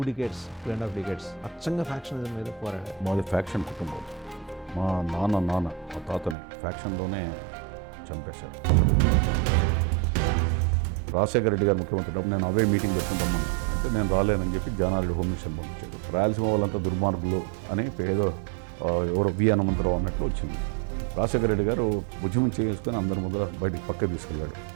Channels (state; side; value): drops out; left; at 6.4 s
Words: decades అచ్చంగా ఫ్యాక్షనిజం మీద పోరాడారు. మాది ఫ్యాక్షన్ కుటుంబం. మా నాన్న మా తాతని ఫ్యాక్షన్లోనే చంపేశారు. రాజశేఖర రెడ్డి గారు ముఖ్యమంత్రి నేను అవే మీటింగ్ పెట్టుకుంటామని అంటే నేను రాలేనని చెప్పి జానారెడ్డి హోమ్ మినిస్టర్ పంపించాడు. రాయలసీమ వాళ్ళంతా దుర్మార్గులు అని ఏదో ఎవరో వి హనుమంతరావు అన్నట్లు వచ్చింది. రాజశేఖర రెడ్డి గారు ఉద్యమం చేసుకొని అందరి ముందర బయటికి పక్క తీసుకెళ్ళాడు.